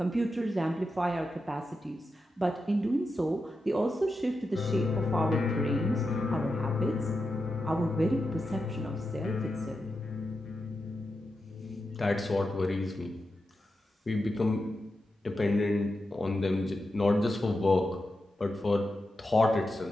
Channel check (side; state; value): both; normal; correlation 0.89